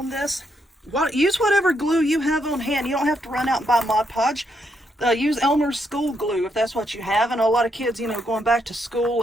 this. Use whatever glue you have on hand. You don't have to run out and buy Mod Podge. Use Elmer's school glue if that's what you have. And a lot of kids, you know, going back to school,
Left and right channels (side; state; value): both; normal; correlation 0.77